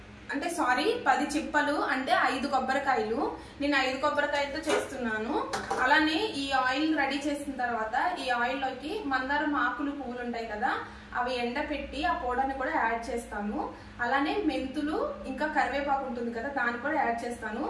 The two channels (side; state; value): both; identical; correlation 1.00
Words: అంటే సారీ 10 చిప్పలు, అంటే 5 కొబ్బరికాయలు. నేను 5 కొబ్బరికాయలతో చేస్తున్నాను. అలానే ఈ ఆయిల్ రెడీ చేసిన తర్వాత ఈ ఆయిల్ లోకి మందారం ఆకులు పువ్వులు ఉంటాయి కదా, అవి ఎండపెట్టి ఆ పౌడర్ని కూడా యాడ్ చేస్తాను. అలానే మెంతులు ఇంకా కరివేపాకు ఉంటుంది కదా, దాన్ని కూడా యాడ్ చేస్తాను.